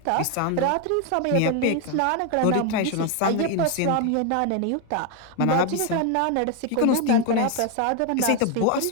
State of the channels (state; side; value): different; both; correlation 0.01